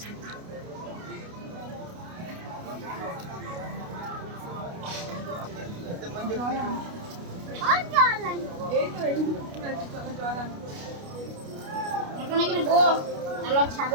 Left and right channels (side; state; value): left; late; 29 ms